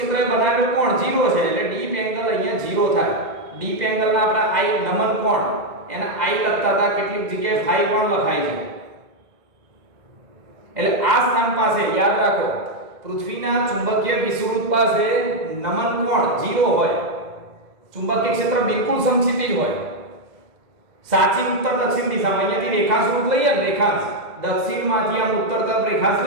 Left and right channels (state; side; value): late; left; 2.0 ms